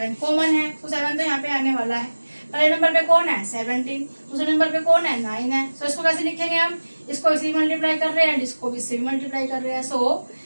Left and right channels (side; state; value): both; inverted; correlation -1.00